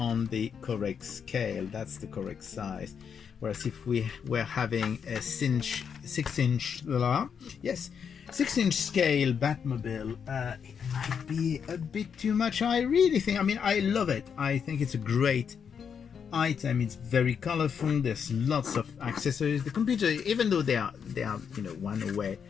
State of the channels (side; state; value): right; quieter; 7.0 dB